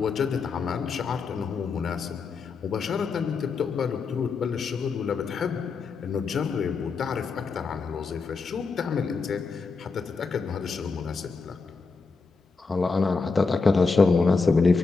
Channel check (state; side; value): quieter; right; 4.5 dB